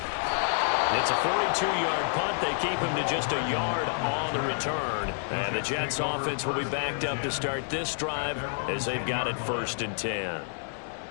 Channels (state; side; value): silent; right; digital silence